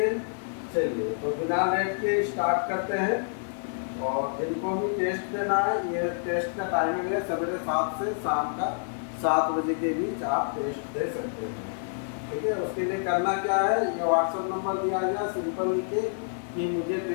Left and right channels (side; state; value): right; silent; digital silence